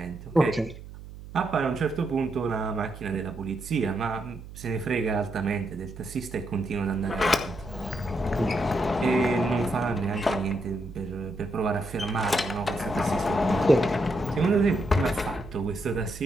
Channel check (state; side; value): noise; right; hum, 14 dB below the sound